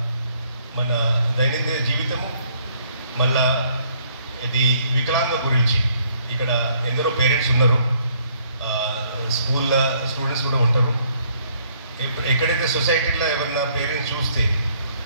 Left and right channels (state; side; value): inverted; both; correlation -0.65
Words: మన దైనందిన జీవితము మళ్ళా ఇది వికలాంగ గురించి ఇక్కడ ఎందరో పేరెంట్స్ ఉన్నారు, స్కూల్లో స్టూడెంట్స్ కూడా ఉంటారు. ఎక్కడైతే సొసైటీలో ఎవరైనా పేరెంట్స్ చూస్తే